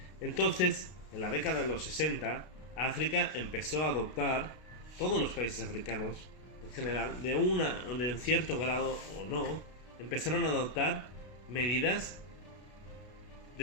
Entonces, en la década de los 60, África empezó a adoptar, todos los países africanos en general, de un cierto grado o no, empezaron a adoptar medidas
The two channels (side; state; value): right; late; 32 ms